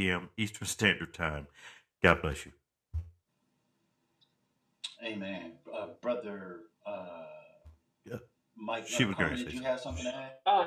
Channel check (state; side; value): identical; both; correlation 1.00